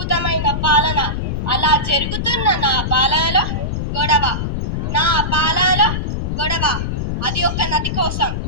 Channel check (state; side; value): noise; left; rumble, 2 dB below the sound